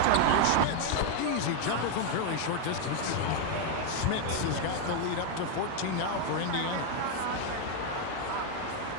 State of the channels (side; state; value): both; different; correlation 0.01